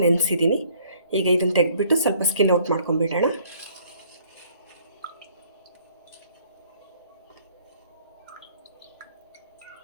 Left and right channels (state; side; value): inverted; both; correlation -0.60